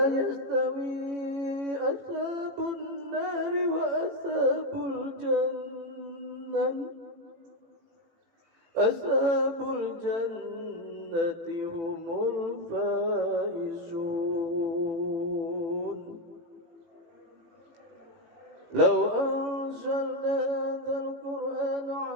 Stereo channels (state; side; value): late; left; 18 ms